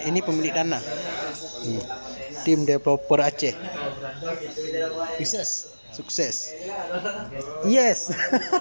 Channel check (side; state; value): both; inverted; correlation -1.00